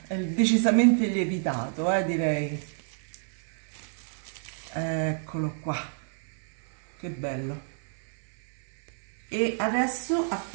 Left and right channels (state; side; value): silent; left; 59 dB below the other